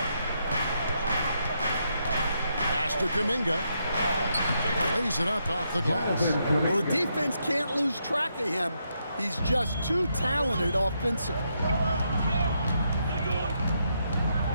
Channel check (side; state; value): both; inverted; correlation -0.79